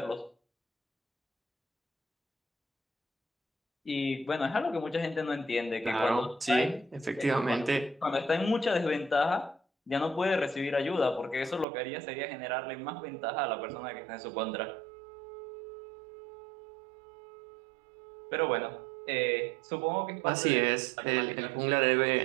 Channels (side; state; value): left; drops out; at 11.7 s